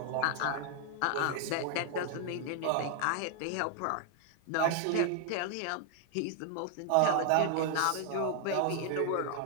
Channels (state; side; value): different; both; correlation 0.00